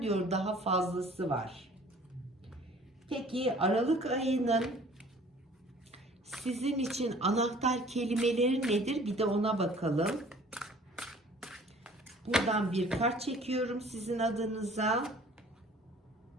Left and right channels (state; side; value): normal; both; correlation 0.51